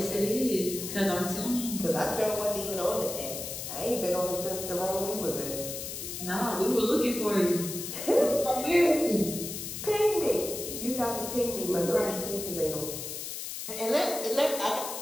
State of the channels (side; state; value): left; noise; hiss, 7 dB below the sound